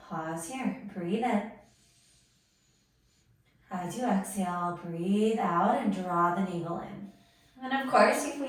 here. Breathe in. As you exhale, breathe out and draw the navel in. And of course,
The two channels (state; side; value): identical; both; correlation 1.00